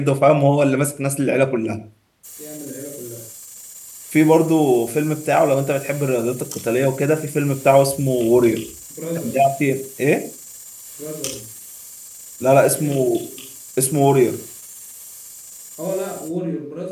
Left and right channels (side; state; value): both; identical; correlation 1.00